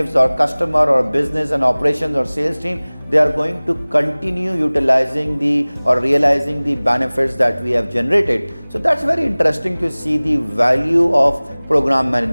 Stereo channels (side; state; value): both; inverted; correlation -1.00